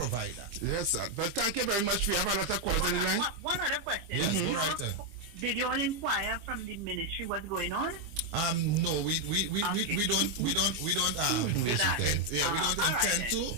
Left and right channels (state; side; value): late; left; 25 ms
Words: that. Yes, sir. But thank you very much. We have a lot of callers on the line. One other question. Yes, go right. Did you all inquire from the ministry what's going on? No, we don't do that. We don't intend to.